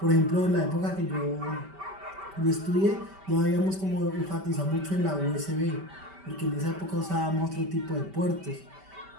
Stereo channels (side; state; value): left; late; 5.1 ms